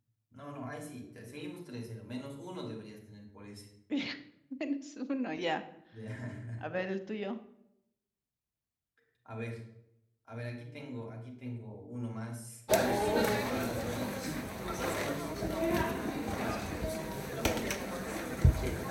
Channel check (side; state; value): both; identical; correlation 1.00